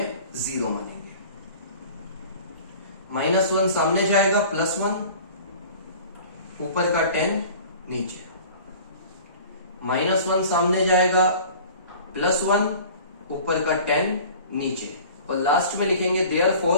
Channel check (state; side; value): inverted; both; correlation -0.44